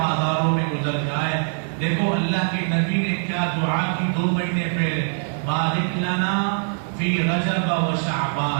میں گزر جائے. دیکھو اللہ کے نبی نے کیا دعا کی 2 مہینے پہلے، بارک لنا فی رجب و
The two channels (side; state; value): left; silent; 64 dB below the other